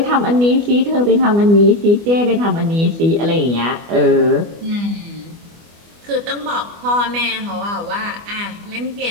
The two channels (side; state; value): left; late; 24 ms